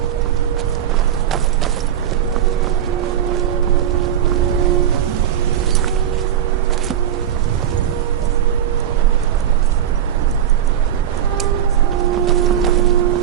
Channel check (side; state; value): left; quieter; 9.9 dB